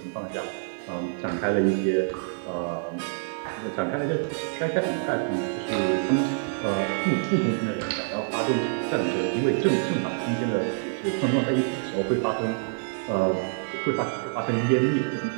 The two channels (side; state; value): left; silent; digital silence